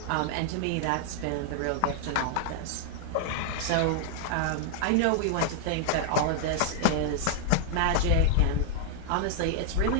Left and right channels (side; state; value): both; different; correlation -0.01